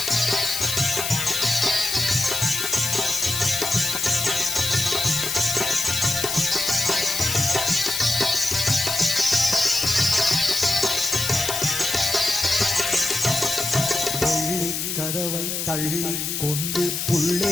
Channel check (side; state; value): left; noise; hiss, 2 dB below the sound